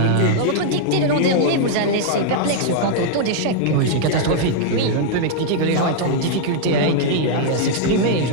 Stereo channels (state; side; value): different; both; correlation -0.01